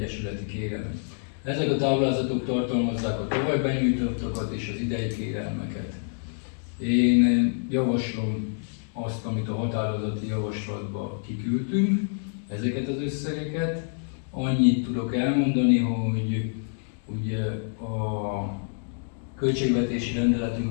kérelem. Ezek a táblázatok tartalmazzák a tavaly benyújtottakat és az idei kérelmeket. Én javaslom azt, amit a határozati javaslatba kiküldtünk, ezeket az összegeket. Annyit tudok elmondani, hogy ugye a költségvetési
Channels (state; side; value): silent; right; 60 dB below the other